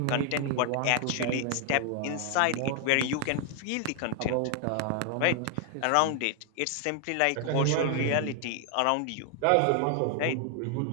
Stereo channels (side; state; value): both; different; correlation 0.00